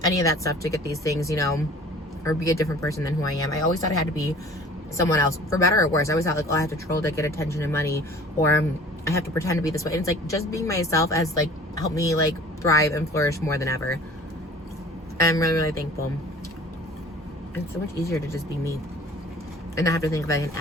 any of that stuff to get these things, you know, or be a different person than who I am. I always thought I had to be someone else, for better or worse. I always thought like, oh, I have to troll to get attention and money, or I have to pretend to be this way. And it's like, just being myself has like helped me like thrive and flourish more than ever. And I'm really, really thankful. It's so much easier to just be me and not have to think of like an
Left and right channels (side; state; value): both; normal; correlation 0.47